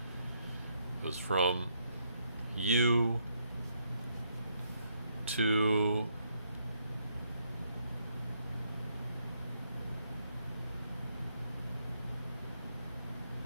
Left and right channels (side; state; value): both; inverted; correlation -0.75